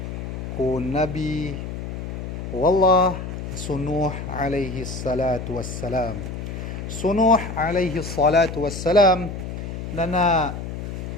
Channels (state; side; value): noise; left; hum, 7 dB below the sound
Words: ko Nabi Wallah Sunuh alaihi salatu wassalam. Sunuh alaihi salatu wassalam na